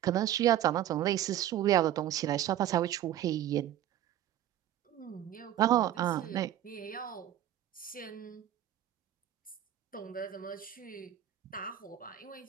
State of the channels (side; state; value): left; quieter; 12.1 dB